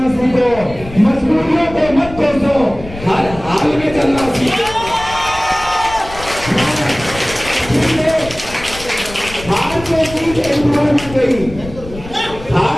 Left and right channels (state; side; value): noise; left; rumble, 14 dB below the sound